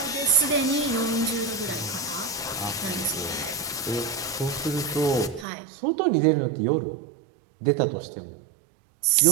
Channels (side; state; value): left; drops out; at 5.5 s